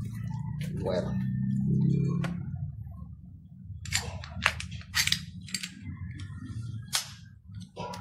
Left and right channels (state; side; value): identical; both; correlation 1.00